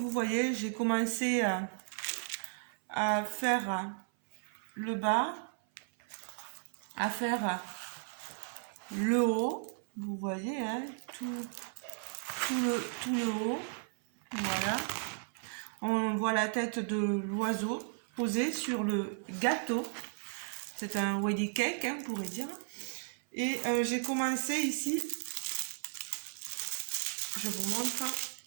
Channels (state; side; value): silent; left; 54 dB below the other